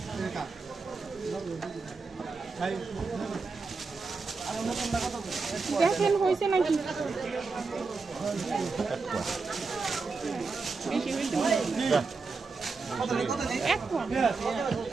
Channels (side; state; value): left; quieter; 4.3 dB